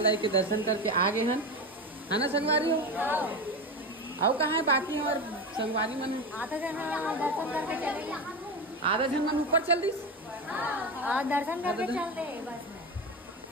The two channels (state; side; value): normal; both; correlation 0.21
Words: दाई के दर्शन करके आ गए हैं है ना संगवारी हो? आओ कहाँ है बाकी और संगवारी मन आधा जन दर्शन करके चलेगा। आधा जन मन ऊपर चल दी दर्शन करके चल दे बस में।